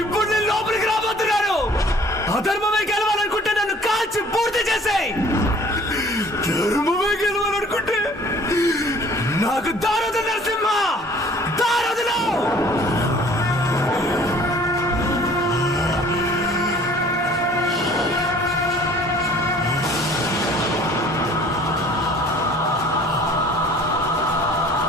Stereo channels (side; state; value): both; normal; correlation 0.52